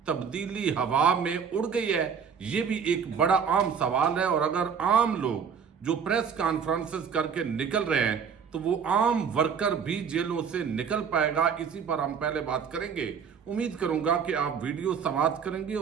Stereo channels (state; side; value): quieter; left; 6.8 dB